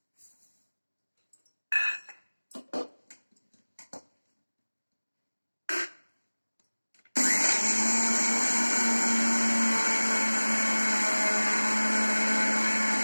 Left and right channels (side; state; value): both; inverted; correlation -1.00